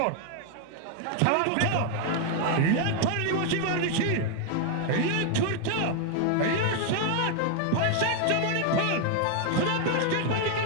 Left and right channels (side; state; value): both; different; correlation 0.00